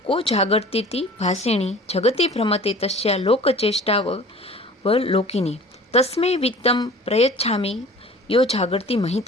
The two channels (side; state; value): both; normal; correlation 0.44